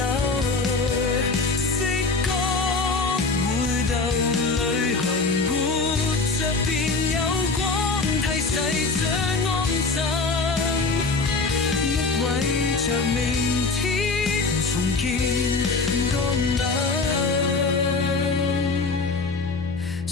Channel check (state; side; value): quieter; right; 3.9 dB